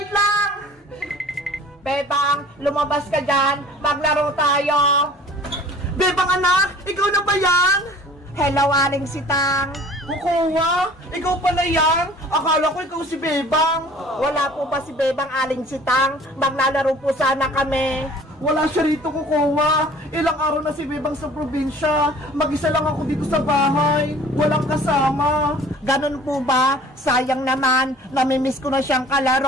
lang! Bebang, lumabas ka dyan! Maglaro tayo! Bebang anak! Ikaw na ba yan? Hello, Aling Sitang! Kukuha? Ikaw pala yan? Akala ko ikaw si Bebang. Wala po ba si Bebang, Aling Sitang? Maglalaro po sana kami. Wala siya rito, kukuha. Ilang araw na si Bebang sa probinsya. Mag-isa lang ako dito sa bahay. Walang kasama. Ganun po ba? Sayang naman. Namimiss ko na siyang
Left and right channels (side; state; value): both; normal; correlation 0.49